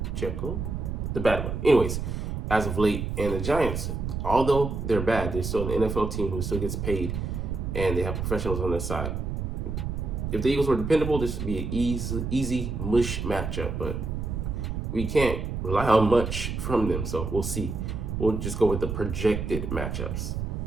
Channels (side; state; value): right; noise; rumble, 3 dB below the sound